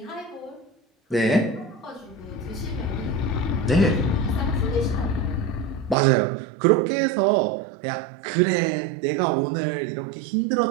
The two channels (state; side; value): drops out; left; at 6.0 s